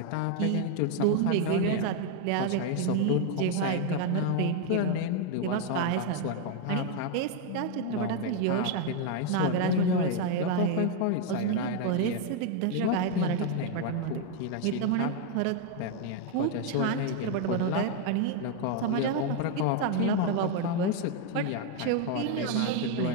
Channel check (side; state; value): both; different; correlation 0.01